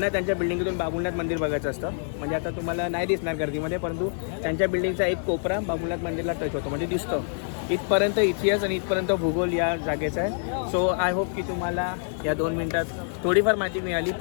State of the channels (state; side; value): silent; right; 57 dB below the other